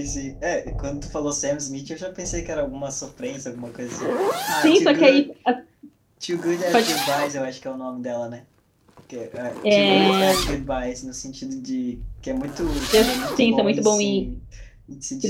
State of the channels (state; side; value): identical; both; correlation 1.00